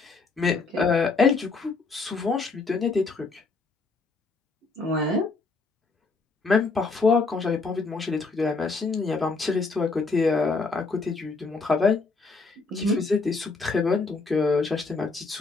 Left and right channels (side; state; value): right; quieter; 4.0 dB